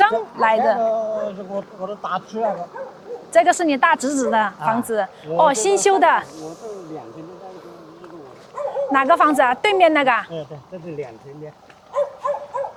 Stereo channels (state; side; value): identical; both; correlation 1.00